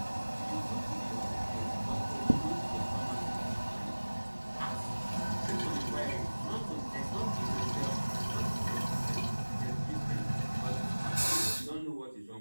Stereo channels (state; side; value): inverted; both; correlation -1.00